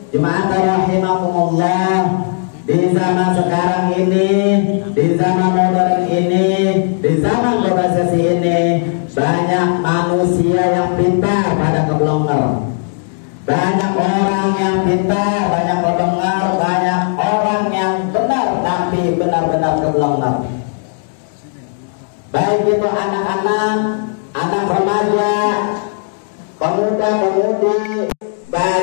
jemaat rahimakumullah, di zaman sekarang ini, di zaman modern ini, di zaman globalisasi ini, banyak manusia yang pintar pada keblonger, banyak orang yang pintar, banyak kebenger, banyak orang yang benar tapi benar-benar keblonger. Baik itu anak-anak, anak remaja, pemuda-pemudi,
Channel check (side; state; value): right; silent; digital silence